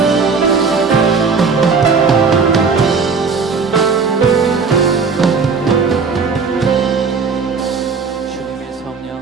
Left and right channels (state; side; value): quieter; left; 5.0 dB